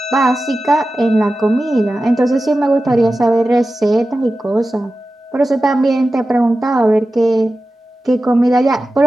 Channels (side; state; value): both; normal; correlation 0.94